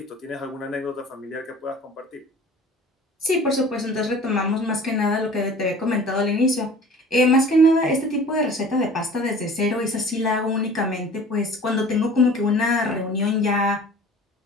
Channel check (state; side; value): normal; both; correlation 0.44